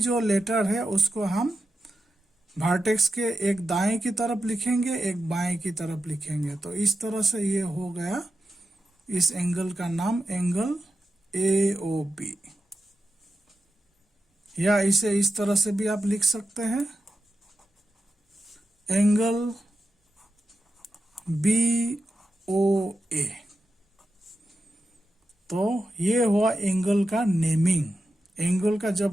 लेटर है उसको हम वर्टेक्स के एक दाएं की तरफ लिखेंगे, एक बाएं की तरफ लिखेंगे। तो इस तरह से ये हो गया इस एंगल का नाम एंगल ए ओ बी। या इसे इस तरह से भी आप लिख सकते हैं, एंगल बी ओ ए। तो ये हुआ एंगल का नेमिंग। एंगल का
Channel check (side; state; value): both; normal; correlation 0.89